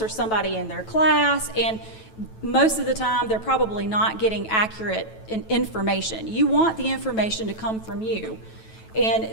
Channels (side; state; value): right; late; 9.1 ms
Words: or somebody in their class, and most of the time they're probably not getting accurate information. You want the information to come from you, and